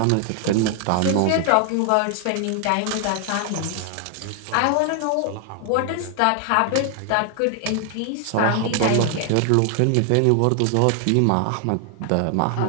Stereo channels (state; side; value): different; both; correlation 0.00